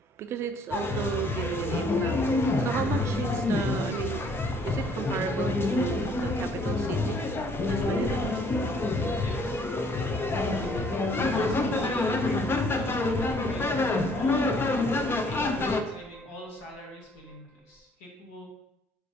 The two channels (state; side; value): normal; both; correlation 0.62